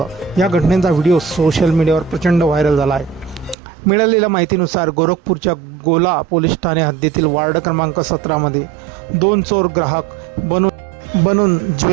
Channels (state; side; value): drops out; left; at 3.6 s